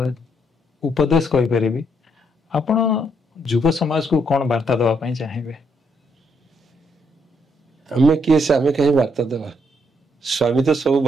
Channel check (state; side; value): normal; both; correlation 0.74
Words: उपदेश कहि परिबी आपण युव समाज को कौन वार्ता देवा पई चाहिबे हमें किए से हमें कहीं वार्ता देवा स्वामी तो सब